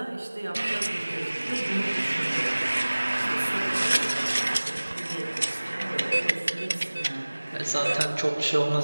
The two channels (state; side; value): inverted; both; correlation -1.00